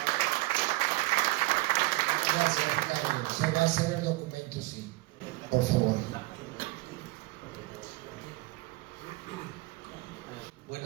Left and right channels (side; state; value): left; quieter; 21.5 dB